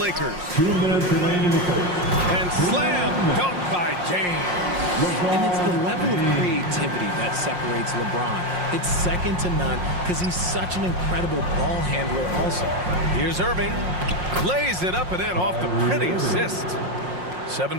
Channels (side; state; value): left; late; 5.6 ms